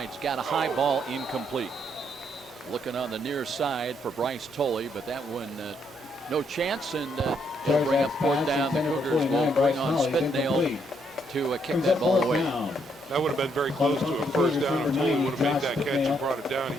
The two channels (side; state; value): both; normal; correlation 0.73